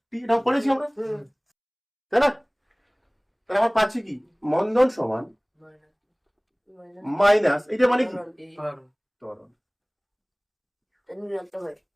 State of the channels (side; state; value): both; identical; correlation 1.00